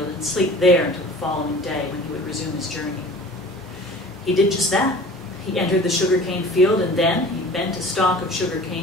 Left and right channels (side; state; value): both; normal; correlation 0.43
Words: and sleep there until the following day when he would resume his journey. He did just that. He entered the sugarcane field, and then he bent a stalk of